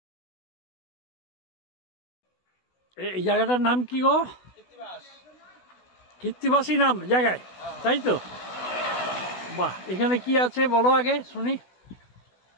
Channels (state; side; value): late; right; 16 ms